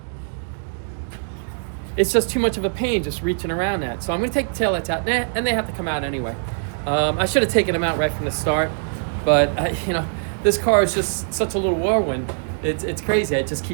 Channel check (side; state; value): left; silent; digital silence